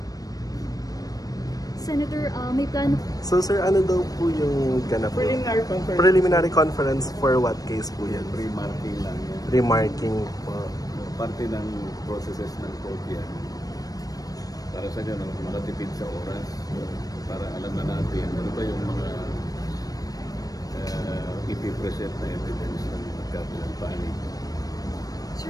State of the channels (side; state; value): right; late; 0.18 ms